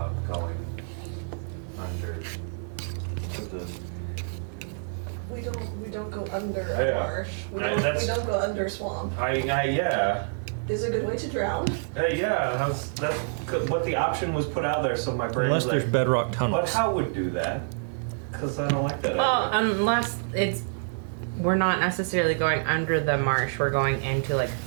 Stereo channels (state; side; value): silent; left; digital silence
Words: going under to the? We don't go under I a know. marsh. We That's- don't go under a swamp. Yeah. This is a good way to drown. Yeah, that's what the option was put out there, so my brain Unless was there's like, bedrock tunnels. but how would do that? Because I don't like that Well, idea. unless we're not necessarily going under the marsh, we're going into like